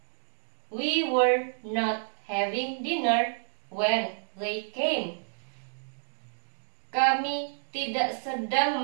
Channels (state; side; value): silent; left; digital silence